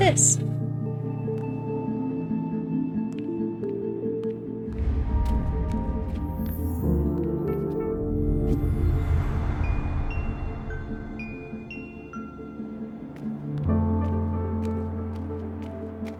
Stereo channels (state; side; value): identical; both; correlation 1.00